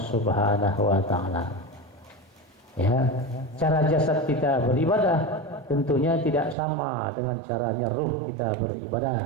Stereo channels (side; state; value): left; drops out; at 6.6 s